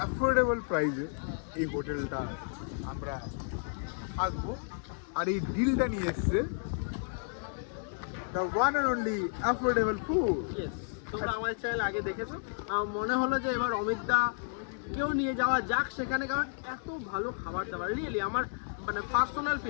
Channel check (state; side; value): silent; right; 56 dB below the other